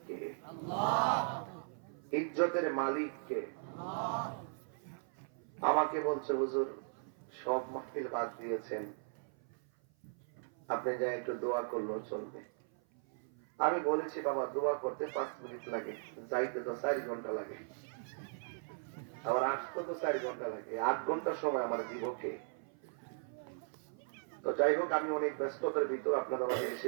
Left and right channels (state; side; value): silent; left; 53 dB below the other